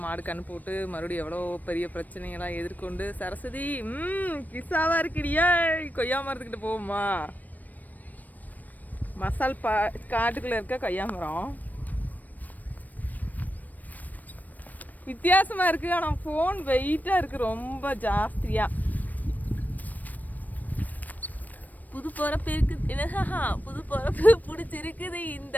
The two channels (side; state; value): right; late; 0.083 ms